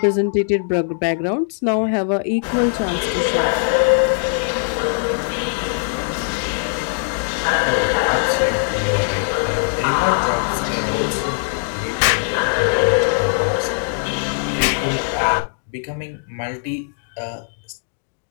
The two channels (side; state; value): right; silent; digital silence